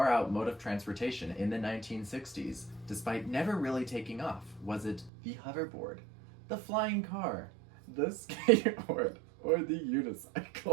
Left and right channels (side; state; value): left; drops out; at 5.1 s